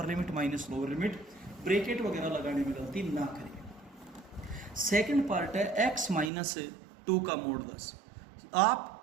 limit minus lower limit, bracket वगैरह लगाने में गलती ना करें। सेकंड पार्ट है x -2 का मॉडुलस।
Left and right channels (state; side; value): drops out; left; at 6.3 s